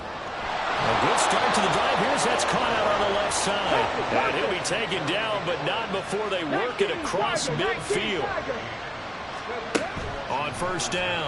A good start to the drive. Here's that's caught out on the left side. And he'll be taken down, but not before they work it across midfield. On 1st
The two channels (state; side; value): identical; both; correlation 1.00